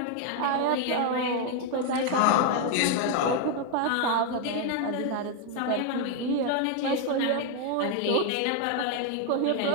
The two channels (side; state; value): both; different; correlation 0.01